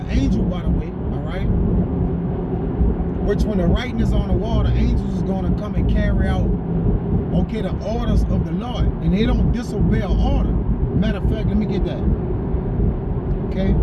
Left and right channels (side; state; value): both; identical; correlation 1.00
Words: angel, by the way, all right? Which when the writing is on the wall, the angels is going to come and carry out, okay, the orders of the Lord. And they don't disobey an order. Matter of fact, let me get that. Okay?